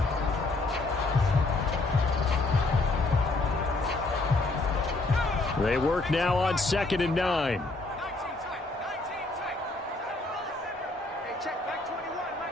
They work now on 2nd and 9.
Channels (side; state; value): right; quieter; 3.1 dB